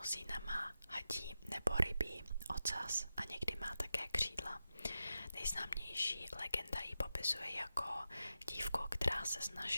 má hadí nebo rybí ocas a někdy má také křídla. Nejznámější legenda ji popisuje jako dívku, která se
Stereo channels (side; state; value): both; inverted; correlation -0.90